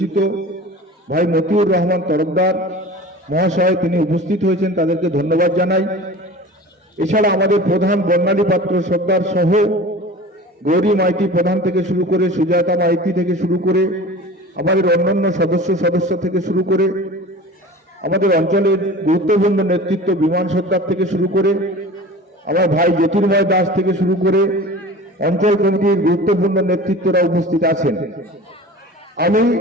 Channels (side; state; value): both; normal; correlation 0.38